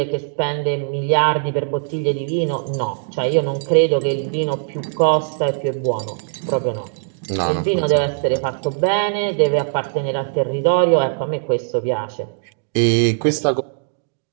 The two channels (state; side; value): silent; left; digital silence